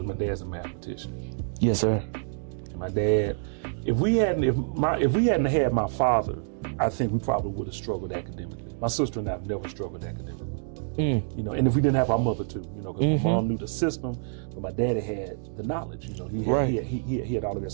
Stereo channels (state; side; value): silent; left; digital silence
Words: my dad's a mathematician. Yes, sir. And my dad, if we hadn't had my father, I think we probably would have struggled academically. My sister and I have never struggled academically. And if we didn't have our mother too, because my mom knew the system, but my daddy had the knowledge. He had all of that.